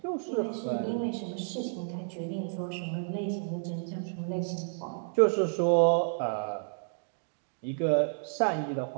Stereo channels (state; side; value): silent; left; digital silence